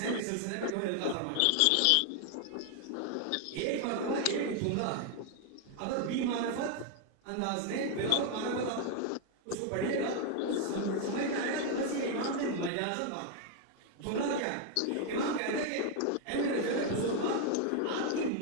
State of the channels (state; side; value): different; both; correlation 0.00